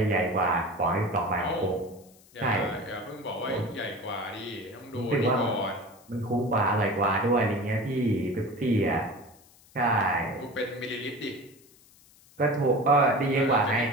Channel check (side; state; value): left; noise; hiss, 27 dB below the sound